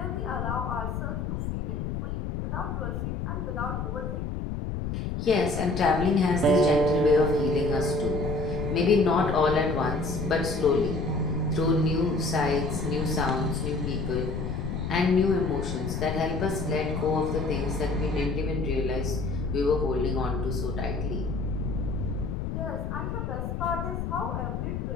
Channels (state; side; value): noise; left; rumble, 3 dB below the sound